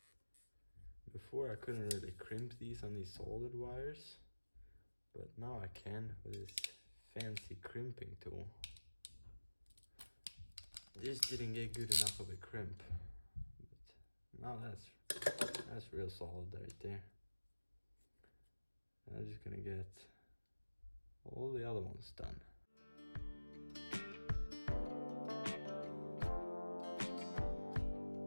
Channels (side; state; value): both; inverted; correlation -1.00